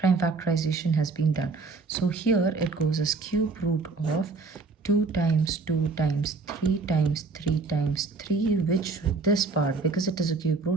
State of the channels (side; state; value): left; quieter; 4.0 dB